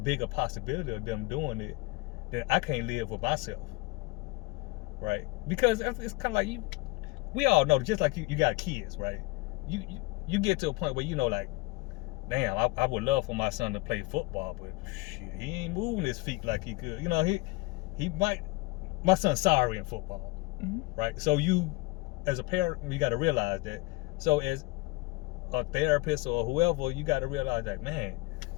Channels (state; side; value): quieter; right; 23.5 dB